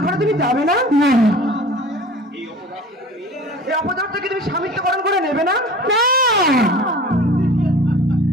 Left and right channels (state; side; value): normal; both; correlation 0.42